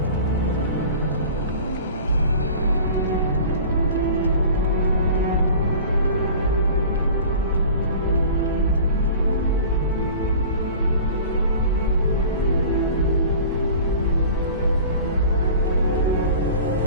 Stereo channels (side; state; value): both; inverted; correlation -0.41